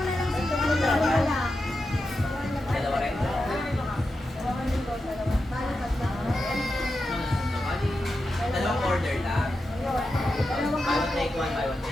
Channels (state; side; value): normal; both; correlation 0.89